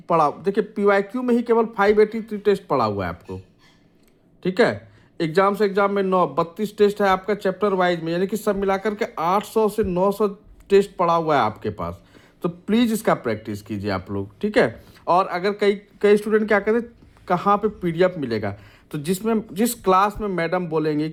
पड़ा। देखिए पीवाईक्यू में ही केवल 583 टेस्ट पड़ा हुआ है आपको। ठीक है, एग्जाम से एग्जाम में 32 टेस्ट है आपका चैप्टर वाइज में, यानी कि सब मिलाकर के 800 से 900 टेस्ट पड़ा हुआ है आपके पास। तो प्लीज़ इसका प्रैक्टिस कीजिए आप लोग। ठीक है, और अगर कई स्टूडेंट क्या कहते हैं कहाँ पे पीडीएफ मिलेगा, तो जिस क्लास में मैडम बोलेंगे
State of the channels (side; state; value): both; identical; correlation 1.00